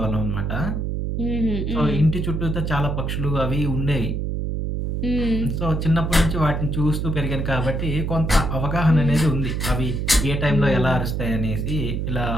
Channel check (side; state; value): right; noise; hum, 1 dB below the sound